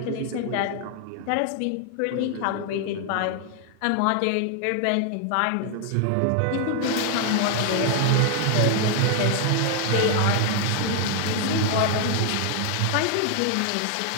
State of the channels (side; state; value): both; different; correlation 0.00